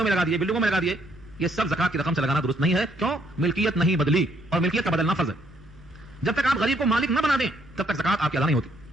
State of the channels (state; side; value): noise; right; hum, 26 dB below the sound